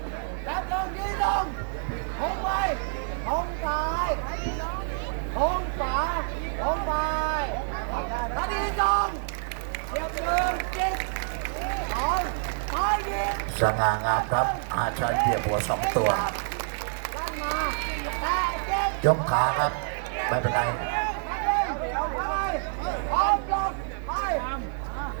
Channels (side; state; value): left; silent; 60 dB below the other